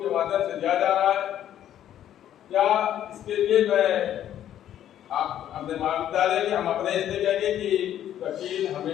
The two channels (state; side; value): quieter; right; 11.1 dB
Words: के माध्यम से दिया जा रहा है, या इसके लिए मैं आप अपने महाविद्यालय के हम अपने इसलिए कहेंगे कि वकील